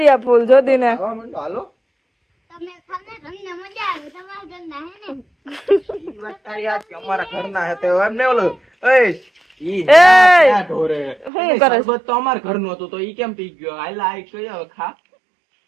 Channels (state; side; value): drops out; left; at 11.3 s